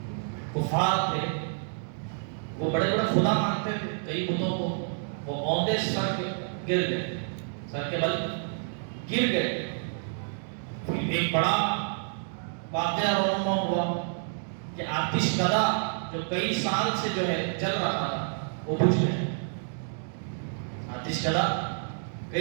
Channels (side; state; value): left; silent; digital silence